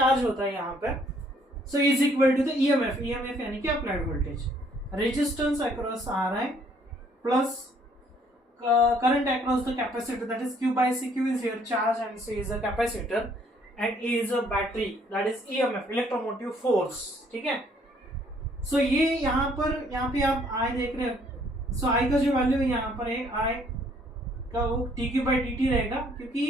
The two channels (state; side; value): normal; both; correlation 0.64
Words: होता है यहाँ पे. So is equal to the EMF. EMF यानी कि applied voltage. Resistance across Ri plus current across the capacitor, that is Q by C. Q is here charge and C is a capacitor and E is a battery, that is EMF, electromotive force. ठीक है. सो ये यहाँ पे आप आई देख रहे हो। सो आई का जो वैल्यू है यहाँ पर है, आई का वो dq by dt रहेगा,